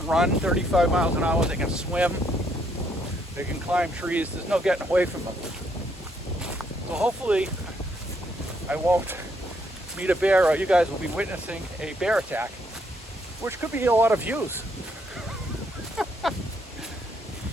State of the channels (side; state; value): both; normal; correlation 0.72